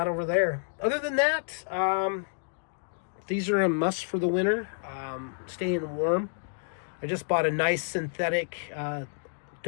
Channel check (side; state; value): right; silent; digital silence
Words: over there. Other than that, these are a must for the winter. Staying warm. I just bought a nice synthetic